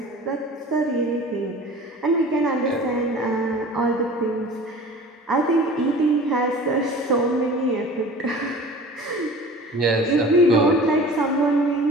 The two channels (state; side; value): normal; both; correlation 0.42